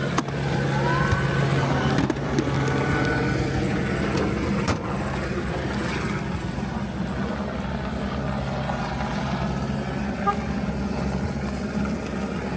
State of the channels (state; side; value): identical; both; correlation 1.00